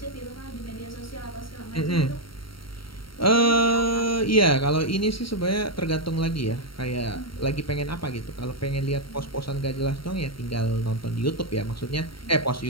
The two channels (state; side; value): late; right; 0.74 ms